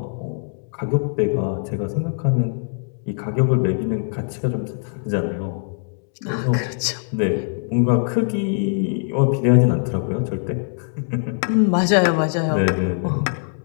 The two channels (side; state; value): right; silent; digital silence